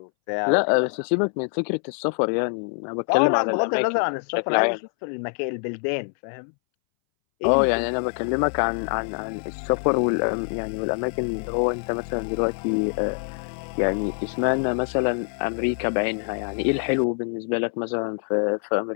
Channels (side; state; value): right; silent; 62 dB below the other